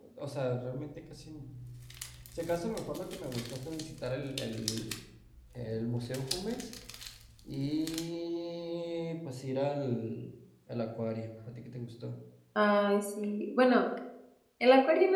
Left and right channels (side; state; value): both; identical; correlation 1.00